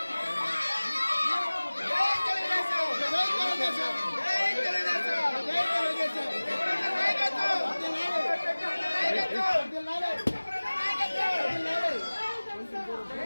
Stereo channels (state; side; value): inverted; both; correlation -1.00